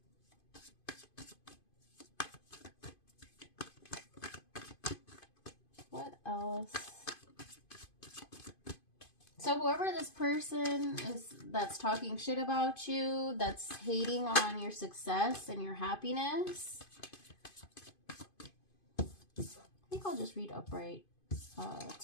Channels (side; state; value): right; late; 2.5 ms